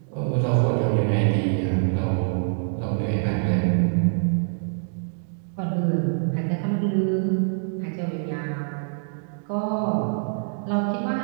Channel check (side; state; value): left; silent; digital silence